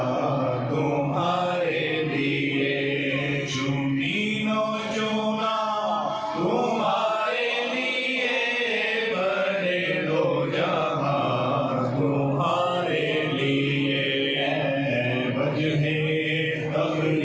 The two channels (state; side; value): identical; both; correlation 1.00